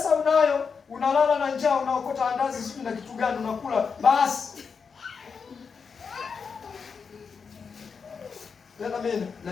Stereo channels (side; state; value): right; quieter; 5.7 dB